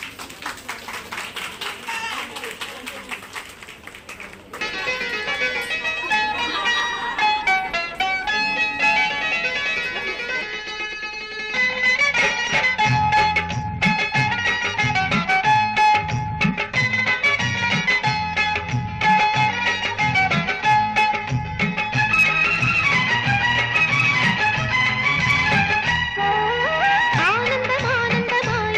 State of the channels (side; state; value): both; identical; correlation 1.00